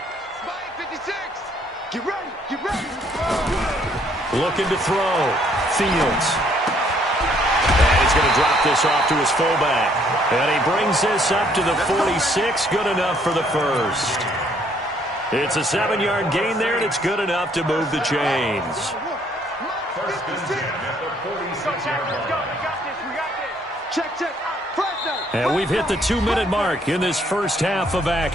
Get ready. Get ready. Looking to throw. Fields. And he's going to drop this off to his fullback. And he brings this up to the 46. Good enough for the first. It's a 7-yard gain there, and it's good enough to move the chains. Check. And we've hit the 2-minute mark in this first half of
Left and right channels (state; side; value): normal; both; correlation 0.65